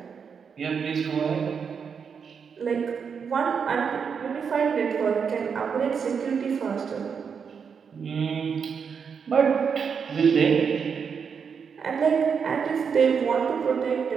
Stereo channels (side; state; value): left; quieter; 6.4 dB